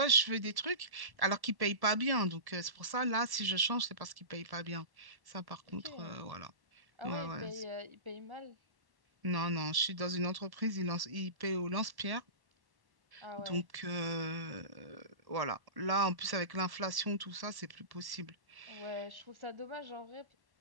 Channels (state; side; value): late; left; 1.1 ms